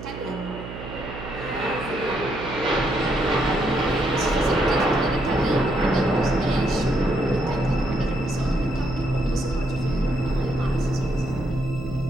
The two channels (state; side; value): noise; right; hum, 11 dB below the sound